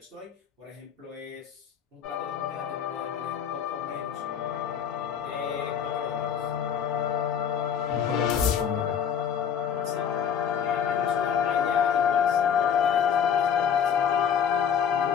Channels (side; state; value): right; quieter; 7.9 dB